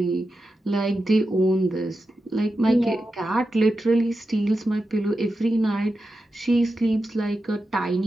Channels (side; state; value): both; normal; correlation 0.90